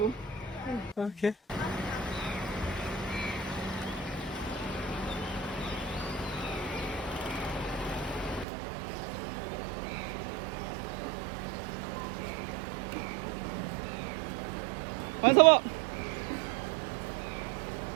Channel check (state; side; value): drops out; left; at 8.5 s